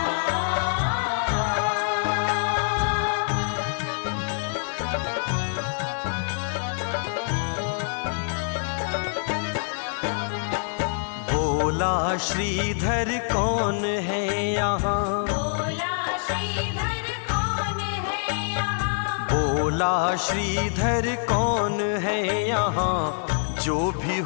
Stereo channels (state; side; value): silent; right; digital silence